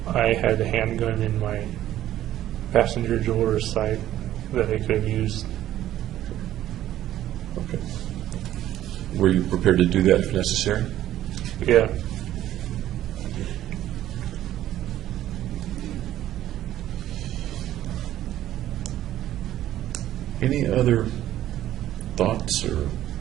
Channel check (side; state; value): left; quieter; 12.9 dB